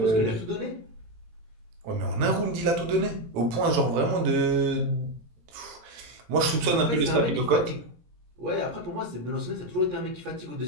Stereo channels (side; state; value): left; late; 18 ms